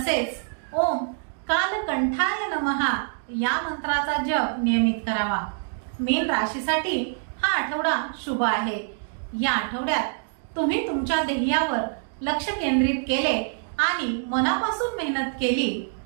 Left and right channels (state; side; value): silent; left; digital silence